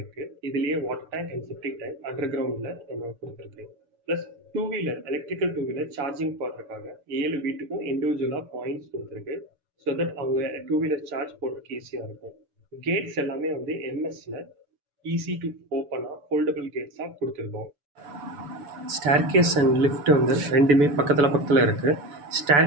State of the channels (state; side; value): late; left; 6.9 ms